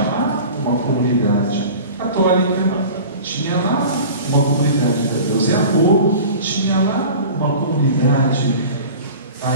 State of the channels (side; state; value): both; inverted; correlation -0.38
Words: lá uma comunidade católica, tinha lá uma comunidade da Deus é Amor, tinha lá uma comunidade,